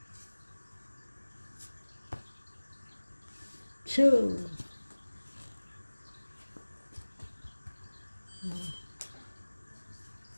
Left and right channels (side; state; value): both; inverted; correlation -1.00